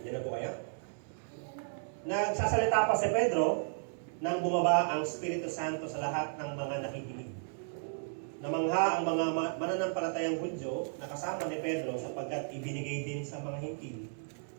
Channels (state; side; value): silent; left; digital silence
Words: dyan na po kayo. Nagsasalita pa si Pedro nang bumaba ang Espiritu Santo sa lahat ng mga nakikinig. Namangha ang mga mananampalatayang Hudyo na kasama ni Pedro sapagkat ibinigay din sa mga Hintil